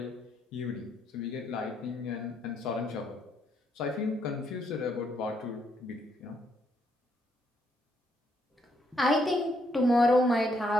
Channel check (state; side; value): normal; both; correlation 0.74